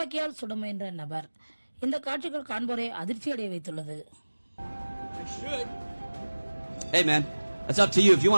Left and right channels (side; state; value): both; inverted; correlation -1.00